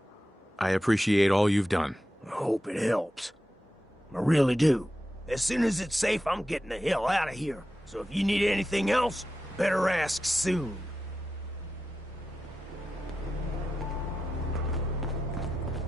I appreciate all you've done. I hope it helps. I really do. As soon as it's safe, I'm getting the hell out of here. So if you need anything else, better ask soon.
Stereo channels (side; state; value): both; normal; correlation 0.91